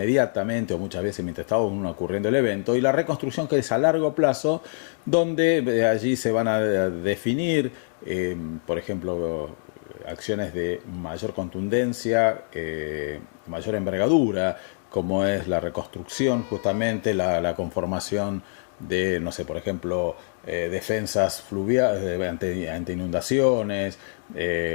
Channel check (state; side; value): silent; right; digital silence